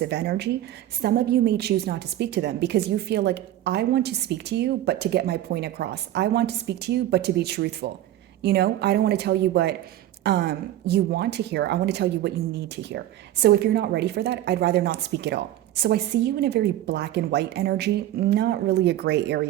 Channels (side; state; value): left; quieter; 13.3 dB